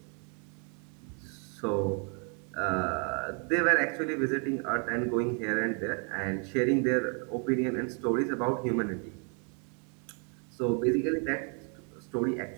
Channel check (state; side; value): quieter; left; 38.9 dB